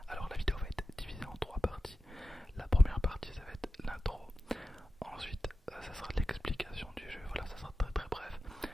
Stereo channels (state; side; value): normal; both; correlation 0.93